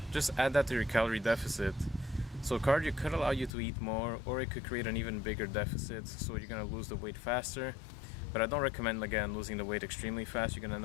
just add that to your calorie deficit. So cardio could allow you to eat more, or it could create an even bigger deficit, so you're going to lose the weight faster. But I don't recommend, again, losing the weight extremely fast. You're going to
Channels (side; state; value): right; drops out; at 3.5 s